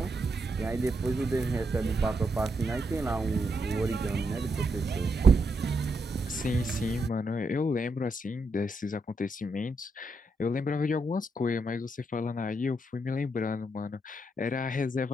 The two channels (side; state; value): both; normal; correlation 0.80